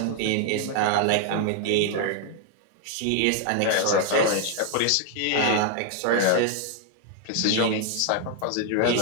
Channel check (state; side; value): different; both; correlation 0.00